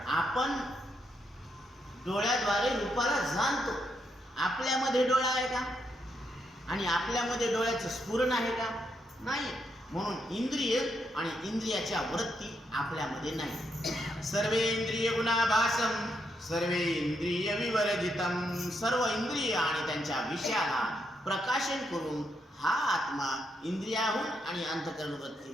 आपण डोळ्याद्वारे रूपाला जाणतो. आपल्यामध्ये डोळा आहे का? आणि आपल्यामध्ये डोळ्याचं स्फुरण आहे का? नाही. म्हणून इंद्रिय आणि इंद्रियाच्या वृत्ती आपल्यामध्ये नाही. सर्वे इंद्रिय गुणाभासम सर्वे इंद्रिय विवर्जितम. सर्व इंद्रिय आणि त्यांच्या विषयाला प्रकाशन करून हा आत्मा इंद्रियाहून आणि अंतःकरण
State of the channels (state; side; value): normal; both; correlation 0.79